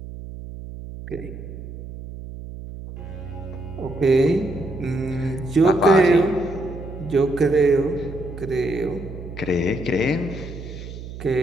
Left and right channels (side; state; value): right; noise; hum, 11 dB below the sound